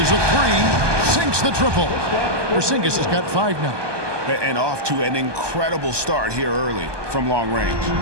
a 3. Sinks the triple. Porzingis has got 5 now. And off to an incredible start here early from long range.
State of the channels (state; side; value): late; left; 1.2 ms